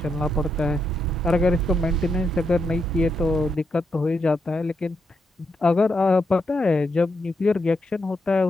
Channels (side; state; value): both; normal; correlation 0.82